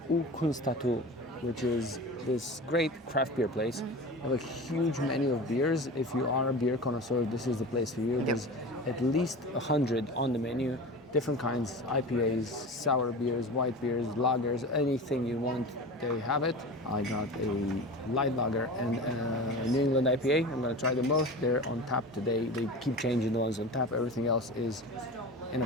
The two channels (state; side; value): normal; both; correlation 0.32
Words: Kunstatu, which is this great craft beer place. They have a huge menu of beers. If you are a beer connoisseur, this is the place for you. There's at least 100 on the menu. Different kinds, IPAs, sour beers, white beers, lagers, anything you want, they have it. I got a light lager and a New England IPA. I'm gonna try them both. They're on tap today. They keep changing the ones on tap. Everything else is in a